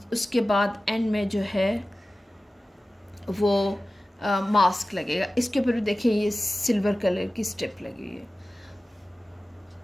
उसके बाद एंड में जो है वो मास्क लगेगा। इसके ऊपर भी देखिए ये सिल्वर कलर की स्ट्रिप लगी हुई है।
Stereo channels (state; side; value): normal; both; correlation 0.96